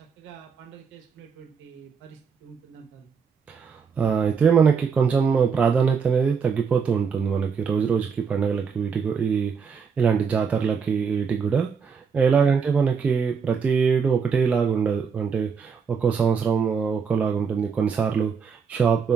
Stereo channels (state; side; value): quieter; left; 6.1 dB